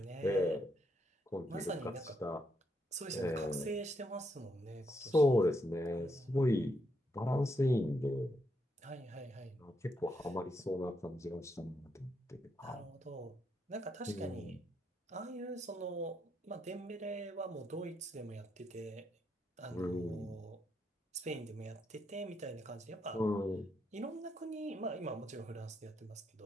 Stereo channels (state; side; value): normal; both; correlation 0.78